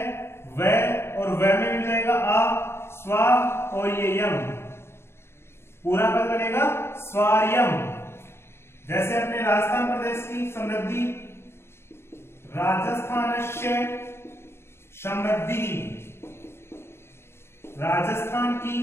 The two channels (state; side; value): late; right; 0.12 ms